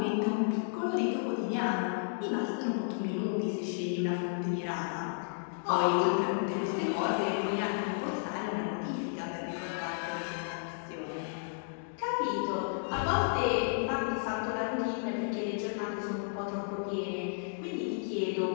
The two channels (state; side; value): silent; right; digital silence